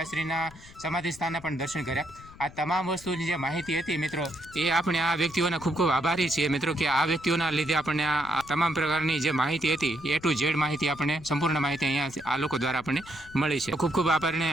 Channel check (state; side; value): noise; left; rumble, 20 dB below the sound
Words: સમાધિ સ્થાનના પણ દર્શન કર્યા. આ તમામ વસ્તુની જે માહિતી હતી મિત્રો એ આપણે આ વ્યક્તિઓના ખૂબ ખૂબ આભારી છીએ મિત્રો કે આ વ્યક્તિઓના લીધે આપણને આ તમામ પ્રકારની જે માહિતી હતી એ ટુ ઝેડ માહિતી આપણને સંપૂર્ણ માહિતી અહીંયા આ લોકો દ્વારા આપણને મળી છે. ખૂબ ખૂબ